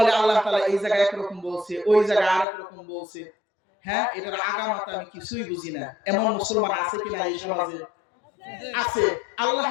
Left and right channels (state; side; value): drops out; right; at 2.5 s